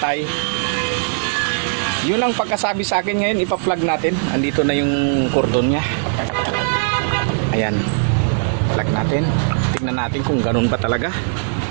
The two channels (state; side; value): silent; left; digital silence